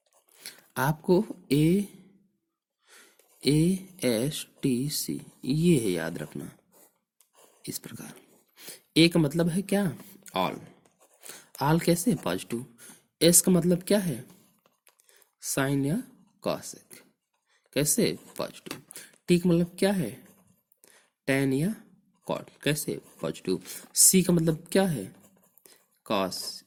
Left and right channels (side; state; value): both; identical; correlation 1.00